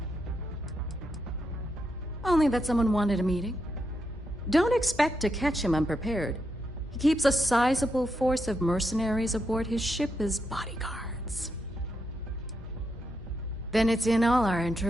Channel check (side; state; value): both; normal; correlation 0.83